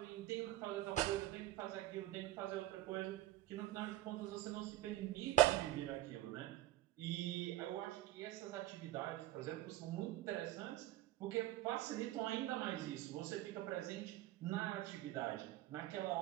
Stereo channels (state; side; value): quieter; left; 15.6 dB